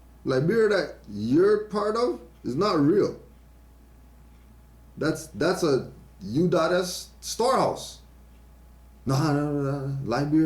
that you're part of is not real. That's a U.S. storehouse. No,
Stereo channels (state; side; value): identical; both; correlation 1.00